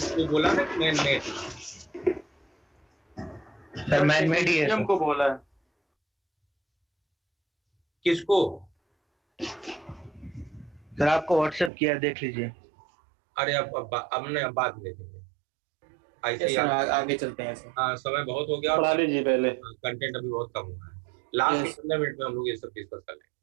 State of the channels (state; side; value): drops out; left; at 11.7 s